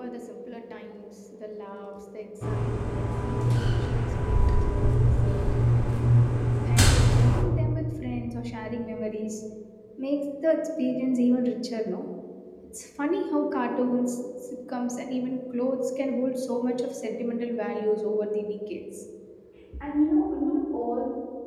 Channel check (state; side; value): identical; both; correlation 1.00